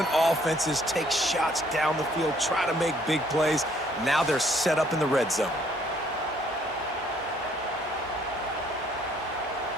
offenses take shots down the field, try to make big plays. Now they're set up in the red zone.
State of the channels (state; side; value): normal; both; correlation 0.63